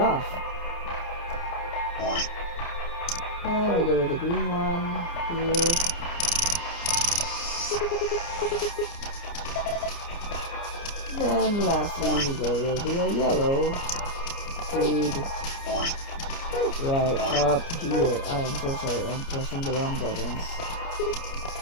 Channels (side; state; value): right; late; 29 ms